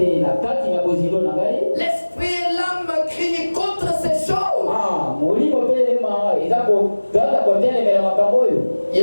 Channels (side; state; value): both; inverted; correlation -1.00